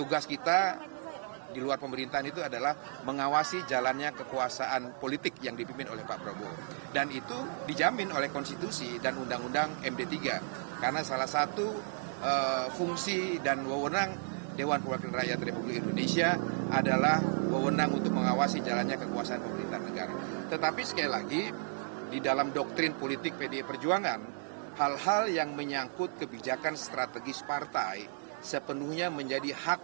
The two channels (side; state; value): left; silent; 55 dB below the other